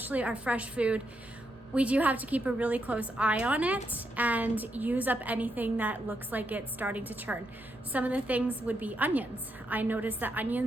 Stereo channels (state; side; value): normal; both; correlation 0.81